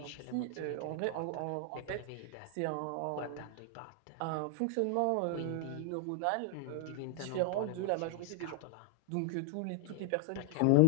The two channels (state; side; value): different; both; correlation 0.00